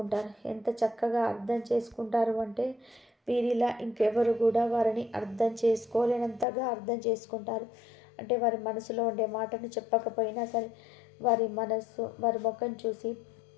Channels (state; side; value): drops out; right; at 6.5 s